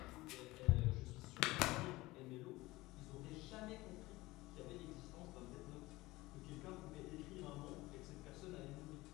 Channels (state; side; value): quieter; right; 19.8 dB